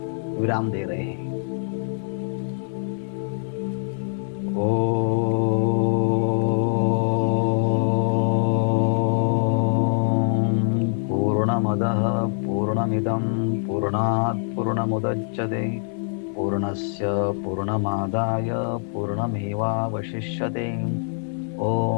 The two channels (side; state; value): right; silent; 56 dB below the other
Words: विराम दे रहे हैं। पूर्णमदः पूर्णमिदं पूर्णात् पूर्णमुदच्यते पूर्णस्य पूर्णमादाय पूर्णमेवावशिष्यते।